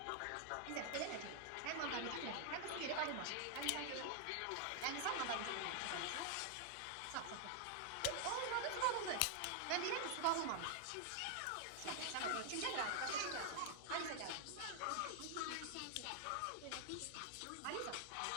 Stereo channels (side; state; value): both; different; correlation 0.00